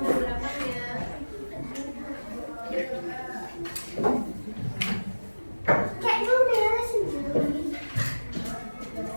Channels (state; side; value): inverted; both; correlation -1.00